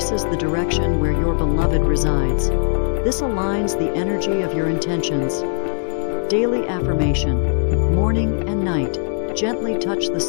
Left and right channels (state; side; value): silent; right; digital silence